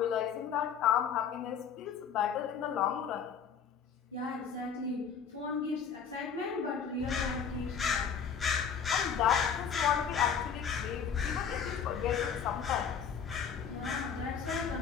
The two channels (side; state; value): right; quieter; 7.2 dB